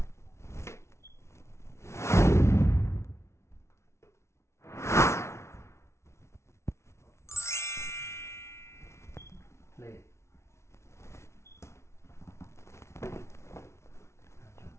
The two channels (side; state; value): right; late; 0.13 ms